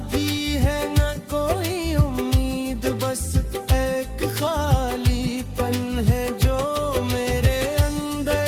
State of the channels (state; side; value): identical; both; correlation 1.00